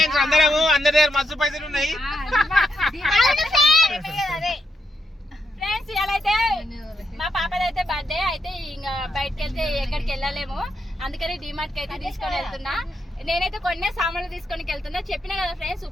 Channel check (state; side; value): normal; both; correlation 0.81